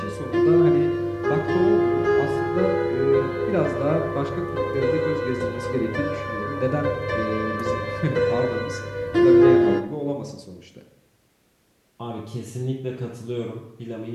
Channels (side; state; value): both; identical; correlation 1.00